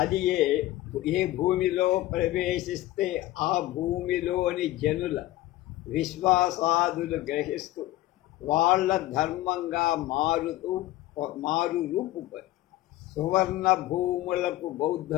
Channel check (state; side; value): quieter; right; 16.0 dB